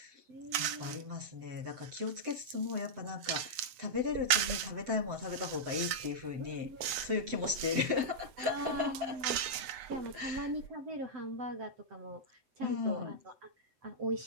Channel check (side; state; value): left; late; 7.9 ms